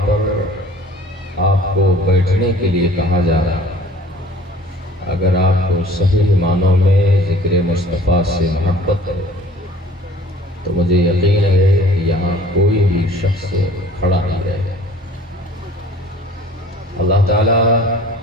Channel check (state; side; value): normal; both; correlation 0.50